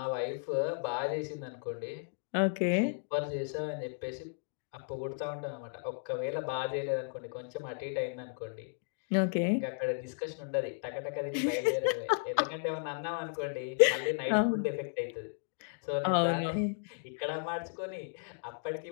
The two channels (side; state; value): right; silent; digital silence